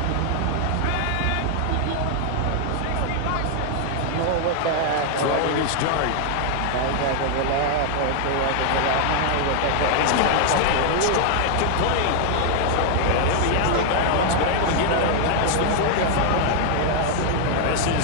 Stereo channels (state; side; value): different; both; correlation 0.00